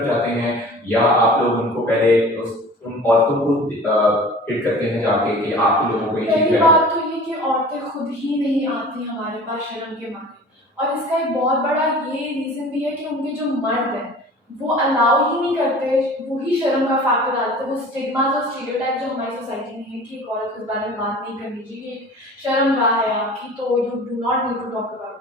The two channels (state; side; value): normal; both; correlation 0.42